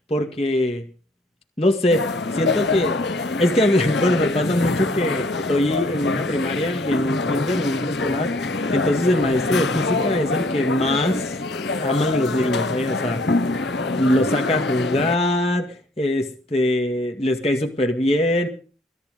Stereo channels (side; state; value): both; normal; correlation 0.61